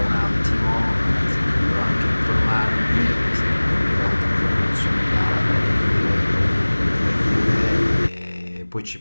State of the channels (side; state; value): both; inverted; correlation -1.00